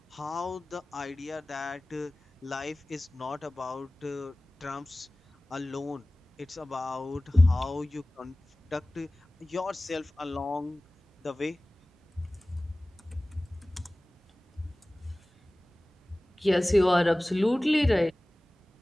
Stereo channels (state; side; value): normal; both; correlation 0.98